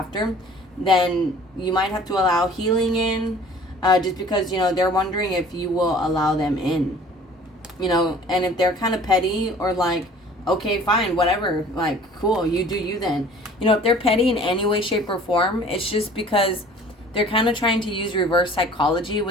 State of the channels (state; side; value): normal; both; correlation 0.49